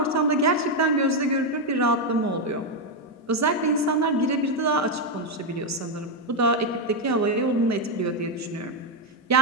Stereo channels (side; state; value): both; normal; correlation 0.03